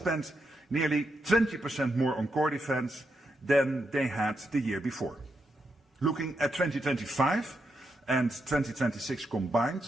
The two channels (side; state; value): both; normal; correlation 0.82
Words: nearly 20% more on core defense than they had the year before. Looking at 2025 and 2026